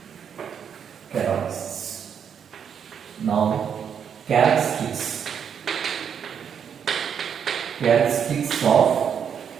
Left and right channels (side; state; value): left; quieter; 7.8 dB